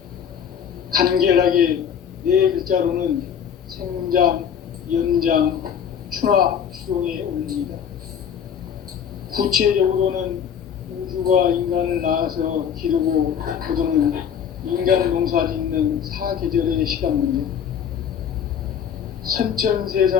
간결하게 네 글자로는 생장, 연장, 추나 추동의 원리이다. 구체적으로는 우주가 인간을 낳아서 기르고 거두는 인간 농사 짓는 사계절의 시간 문제. 선천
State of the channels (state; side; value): quieter; right; 8.1 dB